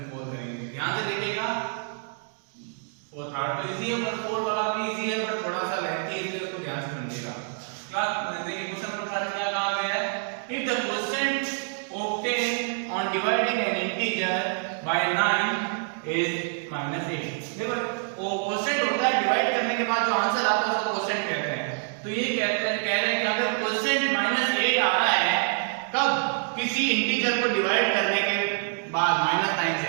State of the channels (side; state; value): left; silent; 60 dB below the other